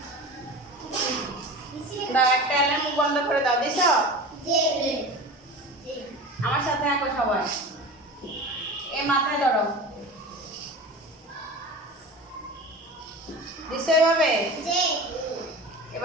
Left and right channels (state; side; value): normal; both; correlation 0.33